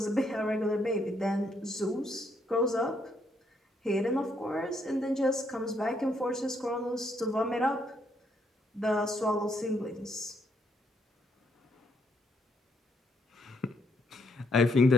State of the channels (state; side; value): normal; both; correlation 0.73